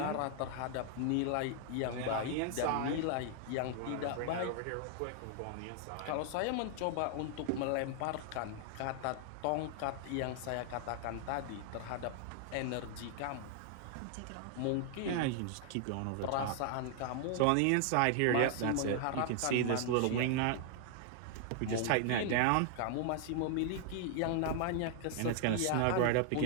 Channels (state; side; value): different; both; correlation 0.00